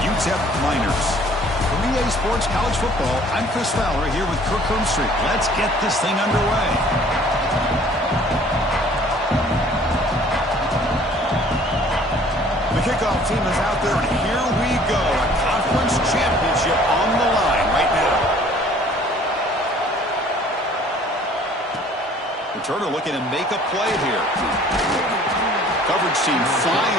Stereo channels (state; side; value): normal; both; correlation 0.54